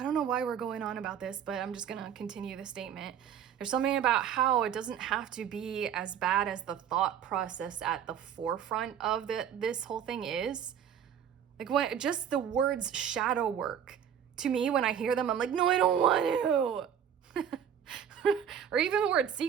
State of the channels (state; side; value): quieter; left; 8.7 dB